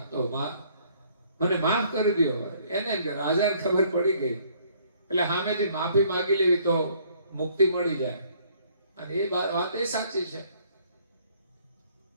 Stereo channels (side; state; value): both; inverted; correlation -0.62